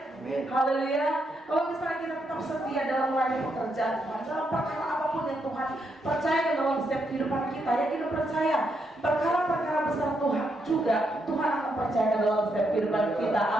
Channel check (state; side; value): normal; both; correlation 0.79